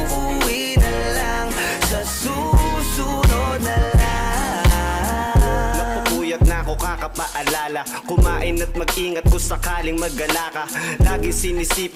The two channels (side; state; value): both; identical; correlation 1.00